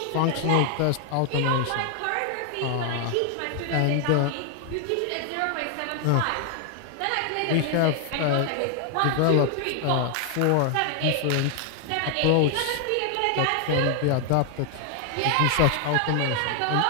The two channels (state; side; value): different; both; correlation 0.00